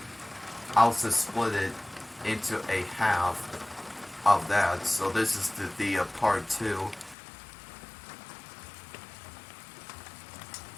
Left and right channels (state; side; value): drops out; right; at 7.2 s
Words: I'll just split it into a half of that. So this is the part 2.